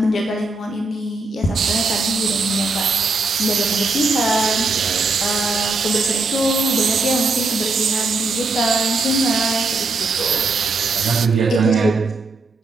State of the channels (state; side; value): quieter; left; 3.4 dB